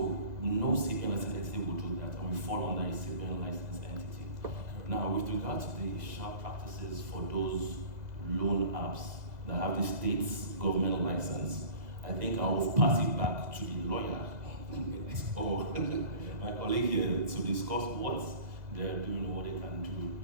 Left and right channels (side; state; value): left; late; 2.0 ms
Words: no CBN licensed entity will do that, and we fall under a CBN licensed entity. Now, with regard to the sharp practices for those loan apps that have the state's government license, I think I will pass it back to the lawyer or my colleague here to discuss what they're doing or what they can